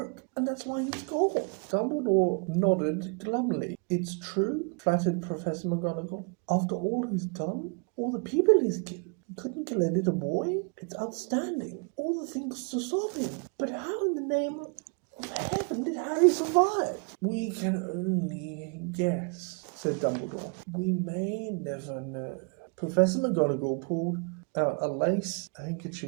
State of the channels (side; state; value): left; quieter; 36.1 dB